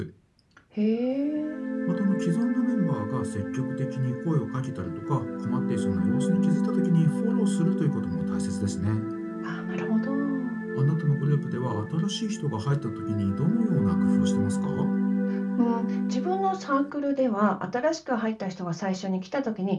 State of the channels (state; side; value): identical; both; correlation 1.00